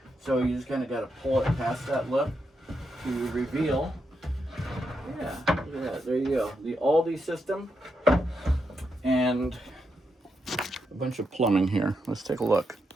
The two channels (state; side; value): normal; both; correlation 0.83